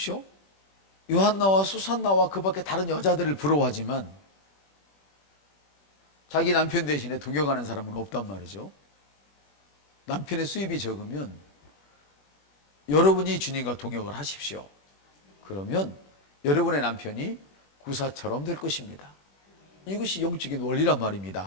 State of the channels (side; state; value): right; late; 21 ms